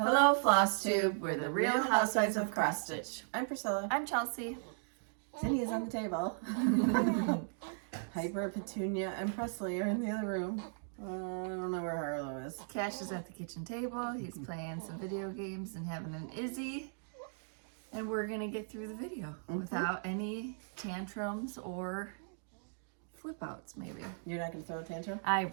Flosstube. We're the real Housewives of Cross Stitch. I'm Priscilla. I'm Chelsea. Cindy is on the table. Piper, Petunia, and Presley are in the other room. I don't know where Harlow is. Cash is at the kitchen table. He's playing some video games and having an Izzy. And we're going to get through the video without any tantrums or flip outs, maybe. You're not going to throw a tantrum? I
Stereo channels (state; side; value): silent; left; digital silence